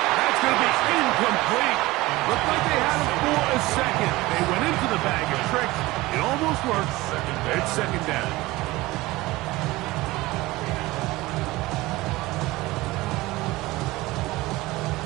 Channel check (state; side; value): quieter; left; 19.7 dB